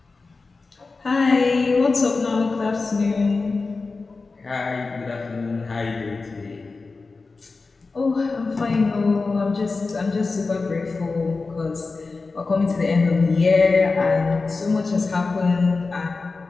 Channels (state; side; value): quieter; right; 4.0 dB